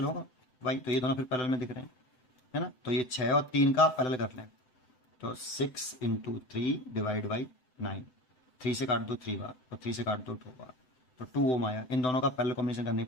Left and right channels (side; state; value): right; late; 7.9 ms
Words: होगा Y, तो ये दोनों फिर पैरेलल में दिख रहे हैं, है ना। तो ये 6 और 3 का पैरेलल कर लें, तो 6 इंटू 3 डिवाइड बाई 9, 3 से काट दो 3 बार और 3 से काट दो 2 बार, तो 2 ओम आया। इन दोनों का पैरेलल कॉम्बिनेशन करने